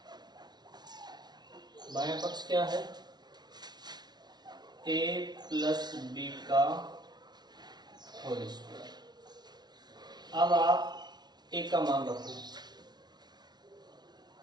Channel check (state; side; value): late; left; 0.20 ms